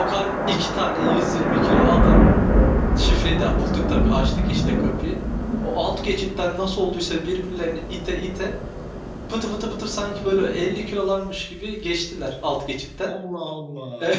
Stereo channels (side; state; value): both; identical; correlation 1.00